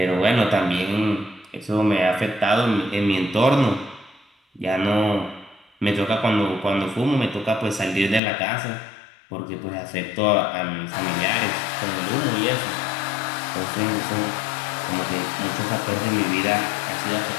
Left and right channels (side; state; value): right; drops out; at 8.2 s